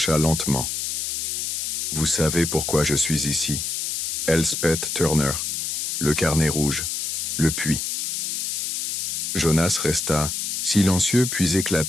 lentement. « Vous savez pourquoi je suis ici. Elspeth Turner, le carnet rouge, le puits. » Jonas resta silencieux puis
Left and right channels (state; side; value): noise; left; hiss, 2 dB below the sound